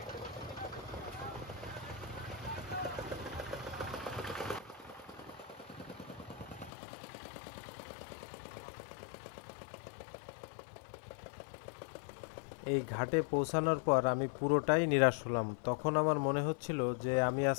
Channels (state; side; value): drops out; right; at 6.7 s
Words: এই ঘাটে পৌঁছানোর পর আমি পুরোটাই নিরাশ হলাম। তখন আমার মনে হচ্ছিল যে আমি